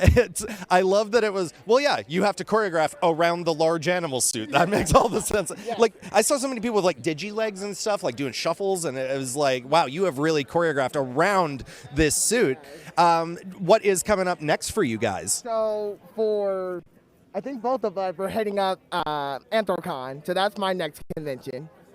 I love that it was, you have to choreograph around the large animal suit. That makes all the sense. Yeah. I saw so many people with digi-legs and stuff, doing shuffles, and it was wow, you have really choreographed around this suit. What is coming up next for you guys? So I think both of us, we're heading up Anthrocon, so that's my next convention.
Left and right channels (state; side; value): identical; both; correlation 1.00